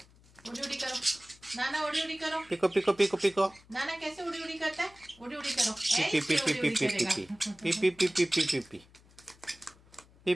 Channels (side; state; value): left; noise; hum, 27 dB below the sound